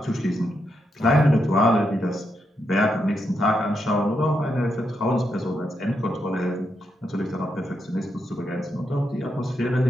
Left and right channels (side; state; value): both; normal; correlation 0.82